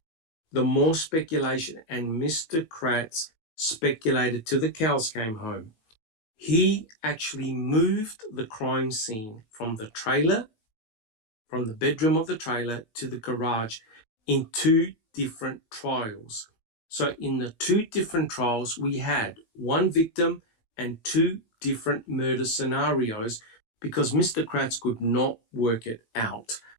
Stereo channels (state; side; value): late; right; 18 ms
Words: The more speculation, and Mr. Kratz speculated till the cows came home. He actually moved the crime scene from the trailer, from the bedroom of the trailer to the garage in 2 different trials. So in the 2 different trials, we had 1 victim and 2 different murder scenarios because Mr. Kratz could not work it out.